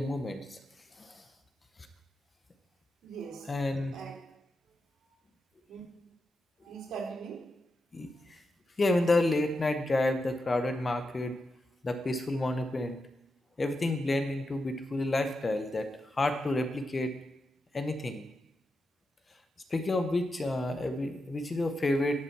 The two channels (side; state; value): both; normal; correlation 0.87